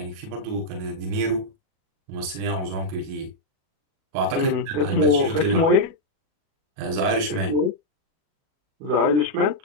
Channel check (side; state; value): left; late; 37 ms